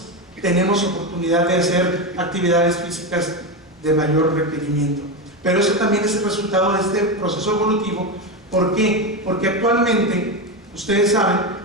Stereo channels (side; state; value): both; normal; correlation 0.14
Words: tenemos oportunidad de hacer actividades físicas de mayor requerimiento. Pero eso también es el resultado de este proceso evolutivo. ¿Por qué? Porque actualmente ustedes saben